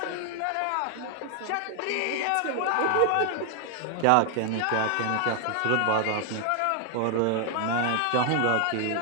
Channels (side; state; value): both; different; correlation 0.00